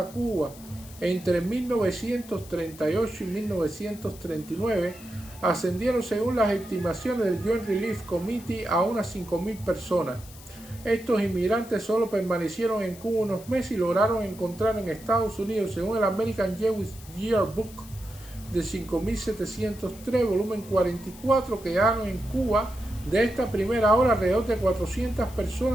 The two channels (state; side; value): noise; left; hiss, 19 dB below the sound